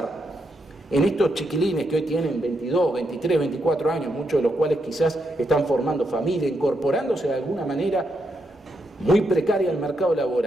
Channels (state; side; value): normal; both; correlation 0.81